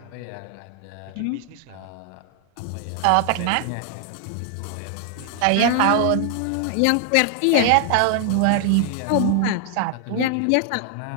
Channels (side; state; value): both; different; correlation 0.00